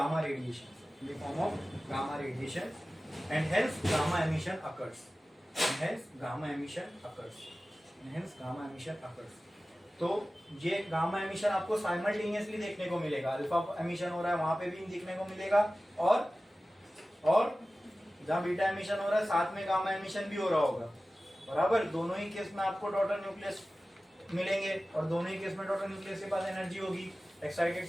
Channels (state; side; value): normal; both; correlation 0.96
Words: radiation. In the form of gamma radiation, and hence gamma emission occurs. And hence gamma emission occurs. And hence gamma emission occurs. तो ये gamma emission आपको simultaneously देखने को मिलेगा. Alpha emission हो रहा है वहां पे भी देखने को मिलेगा, और जहां बीटा एमिशन हो रहा है साथ में गामा एमिशन भी हो रहा होगा. बराबर, दोनों ही केस में आपको डॉटर न्यूक्लियस मिलेंगे, और दोनों ही केस में डॉटर न्यूक्लियस के पास एनर्जी होगी. एक्साइटेड